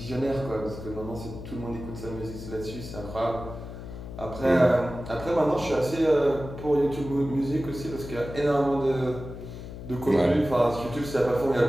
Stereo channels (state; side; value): noise; left; hum, 11 dB below the sound